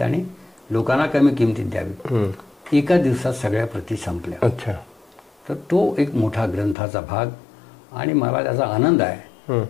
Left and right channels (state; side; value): drops out; right; at 6.8 s